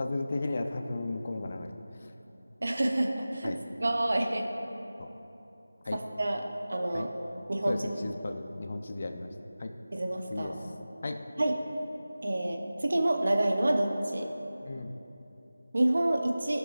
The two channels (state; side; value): inverted; both; correlation -0.97